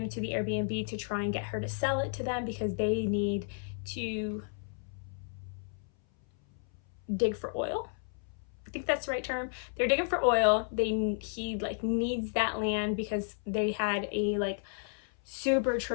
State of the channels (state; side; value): silent; right; 56 dB below the other